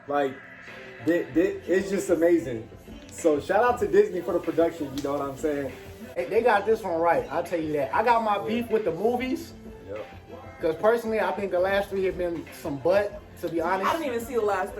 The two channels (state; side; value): identical; both; correlation 1.00